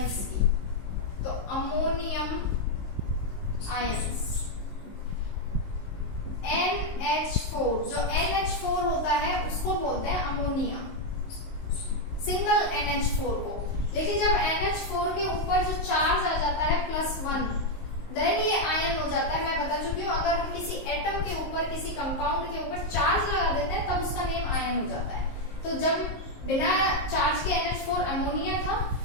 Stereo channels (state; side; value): late; right; 19 ms